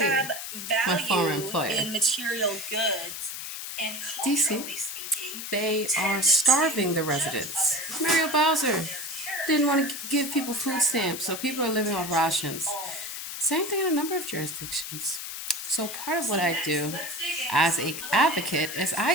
my former value employer. in material goods, and DC, culturally speaking, they are tend starving to the judge residents. others Mario on Bowser their didn't want to character give people rather food than stamps, so what people they are living off actually rations. own. Same thing in a number of jurisdictions. So part of So what I next, do let's dig into as some an little advocate is factors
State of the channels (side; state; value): left; noise; hiss, 7 dB below the sound